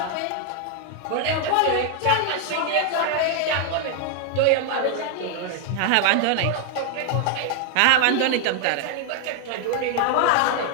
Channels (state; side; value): different; both; correlation 0.00